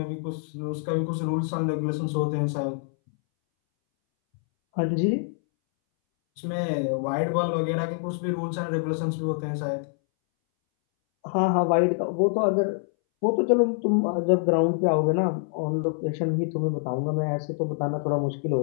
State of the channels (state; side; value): silent; right; 61 dB below the other